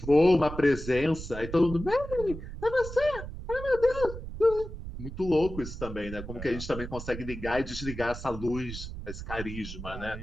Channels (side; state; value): right; noise; rumble, 9 dB below the sound